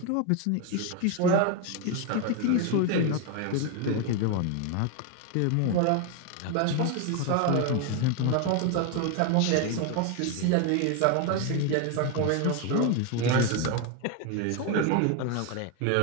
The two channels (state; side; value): different; both; correlation 0.01